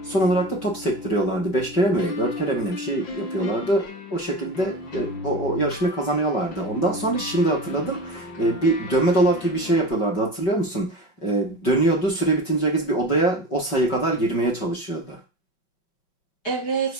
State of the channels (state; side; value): late; right; 5.2 ms